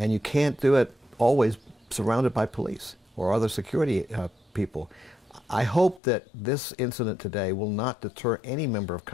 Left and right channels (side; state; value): right; drops out; at 6.0 s